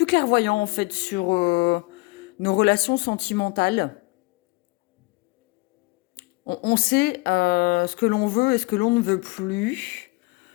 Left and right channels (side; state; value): right; quieter; 25.7 dB